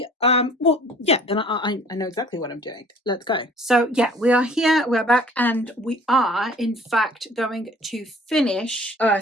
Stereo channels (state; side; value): normal; both; correlation 0.52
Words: Well, yeah, then I know exactly what I'm doing. Let's go. So yeah, we are here, we're back, and we are in fact going to finish